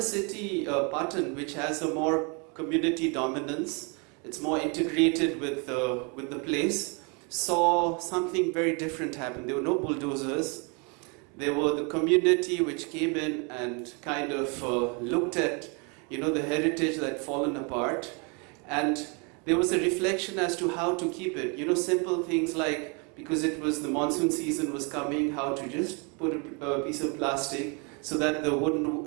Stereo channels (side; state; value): left; quieter; 33.6 dB